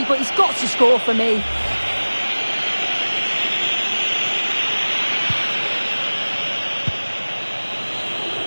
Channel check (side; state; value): both; inverted; correlation -1.00